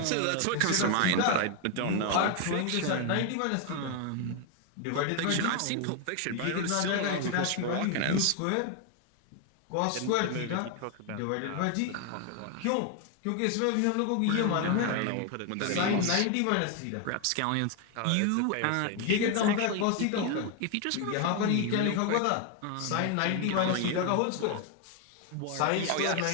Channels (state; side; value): different; both; correlation 0.01